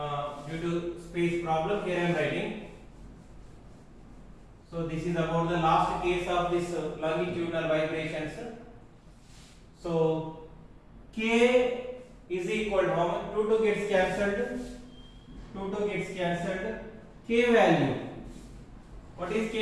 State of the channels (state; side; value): identical; both; correlation 1.00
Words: due to space problem. Here I am writing. So this is about the last case of this longitudinal vibrations. So k is equal to how much? 2 gets cancelled. 2 gets cancelled. K value. What is